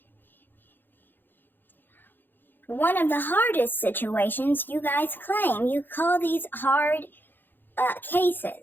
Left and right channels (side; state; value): right; late; 0.095 ms